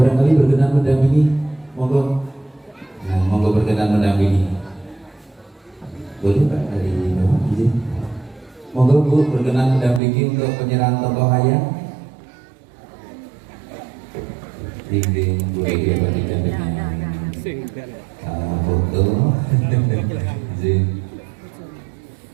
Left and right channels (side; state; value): left; drops out; at 10.0 s